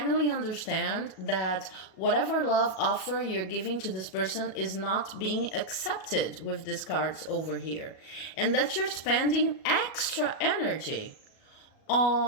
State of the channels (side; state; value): right; late; 37 ms